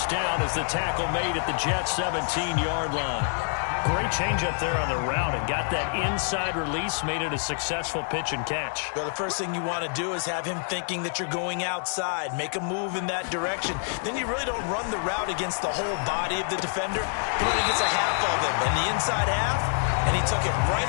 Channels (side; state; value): right; silent; 60 dB below the other